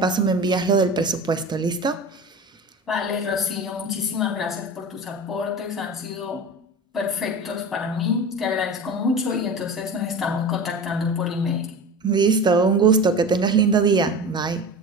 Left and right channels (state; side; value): normal; both; correlation 0.32